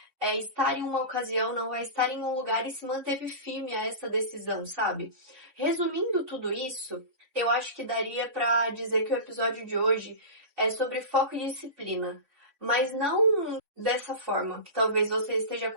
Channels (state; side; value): late; left; 3.8 ms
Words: estar em uma ocasião, não vai estar em um lugar e se manteve firme a essa decisão, sabe? Resumindo tudo isso, eu acho que daria para dizer que o episódio de hoje é sobre foco e disciplina. Mas não dessa forma, que talvez você esteja